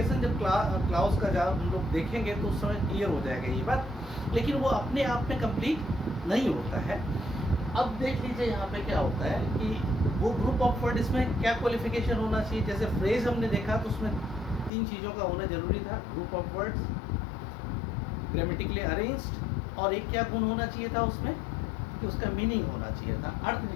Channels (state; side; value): drops out; right; at 14.7 s